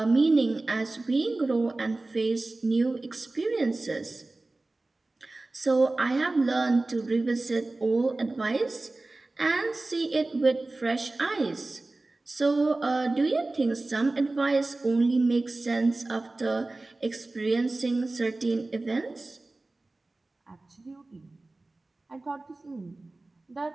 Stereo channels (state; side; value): quieter; left; 3.1 dB